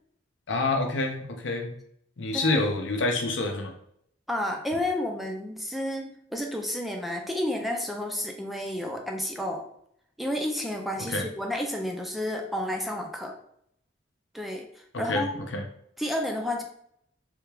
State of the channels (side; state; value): both; normal; correlation 0.49